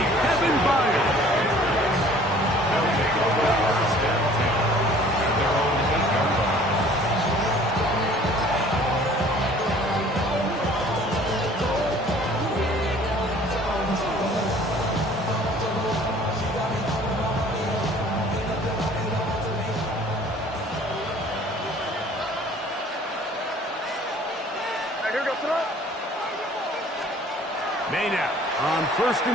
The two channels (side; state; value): both; normal; correlation 0.52